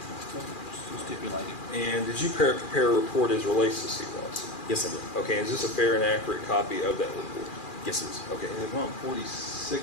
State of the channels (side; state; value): right; late; 2.4 ms